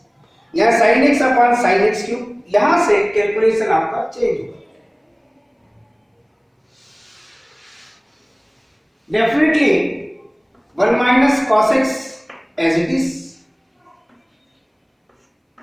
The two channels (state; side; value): identical; both; correlation 1.00